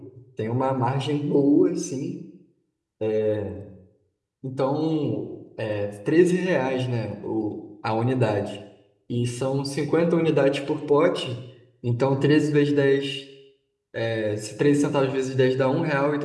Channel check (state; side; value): identical; both; correlation 1.00